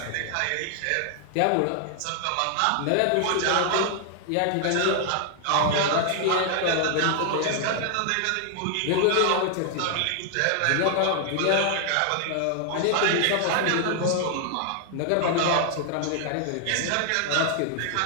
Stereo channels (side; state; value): both; different; correlation 0.00